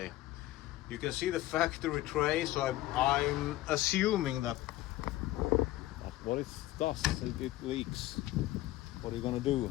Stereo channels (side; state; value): right; quieter; 16.3 dB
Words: You can see the factory tray, so I'm assuming that what it does, it leaks. What are you gonna